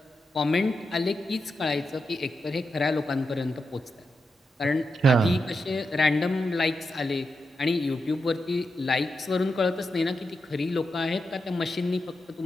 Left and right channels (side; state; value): both; normal; correlation 0.87